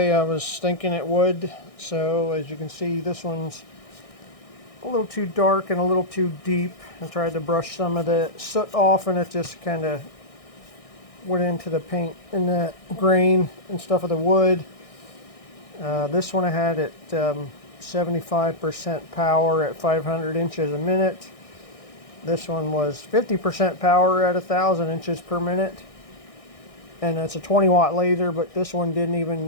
I was thinking it would. So as you can see, this one's a little too dark and a little too deep. I tried to brush some of the soot off and it just kind of went into the paint and the grain and stuff of the wood. This one I had at 75% power at 500 inches a minute. This one was 50% power at 1,000 inches per minute. And it's a 20 watt laser, but this one didn't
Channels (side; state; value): right; late; 1.6 ms